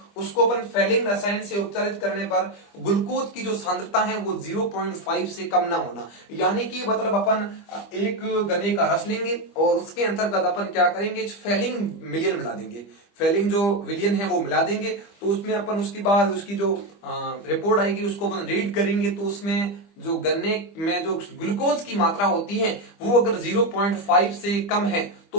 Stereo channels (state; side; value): late; right; 25 ms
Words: उसको अपन फैलिंग रसायन से उपचारित करने पर ग्लूकोज की जो सांद्रता है वो 0.5 से कम ना होना, यानी कि मतलब अपन एक गन्ने का रस लेंगे और उसके अंतर्गत अपन क्या करेंगे, फैलिंग मिलियन मिला देंगे, फैलिंग जो विलियन है वो मिला देंगे। तो उसमें अपन उसके बाद उसकी जो रिपोर्ट आएगी उसको अपन रीड करेंगे, तो उसमें जो गन्ने में जो ग्लूकोज की मात्रा होती है वो अगर 0.5 से कम है